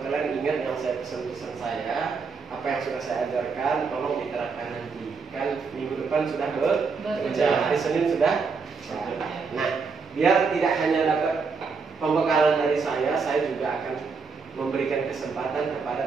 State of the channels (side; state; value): left; quieter; 5.0 dB